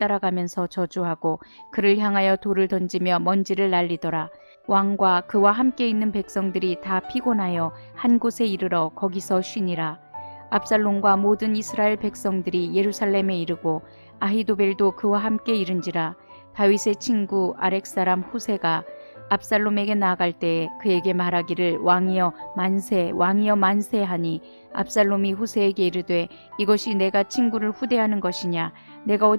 저주하고 그를 향하여 돌을 던지며 먼지를 날리더라. 왕과 그와 함께 있는 백성들이 다 피곤하여 한 곳에 이르러 거기서 쉬니라. 압살롬과 모든 이스라엘 백성들이 예루살렘에 이르고 아히도벨도 그와 함께 이른지라. 다윗의 친구 아렉 사람 후세가 압살롬에게 나아갈 때에 그에게 말하기를 왕이여 만세 왕이여 만세 하니 압살롬이 후세에게 이르되 이것이 내가 친구를 후대하는 것이냐. 내가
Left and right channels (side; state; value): both; inverted; correlation -1.00